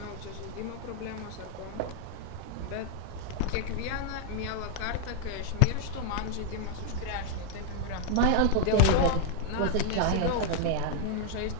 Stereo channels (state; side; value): different; both; correlation 0.00